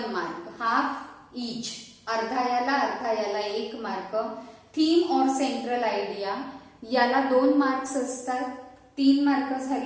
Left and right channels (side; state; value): both; identical; correlation 1.00